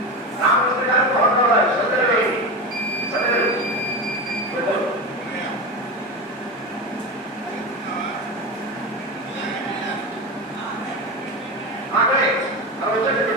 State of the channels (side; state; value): both; normal; correlation 0.21